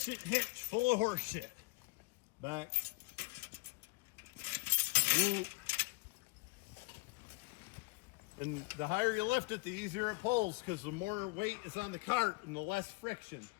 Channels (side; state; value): right; quieter; 25.3 dB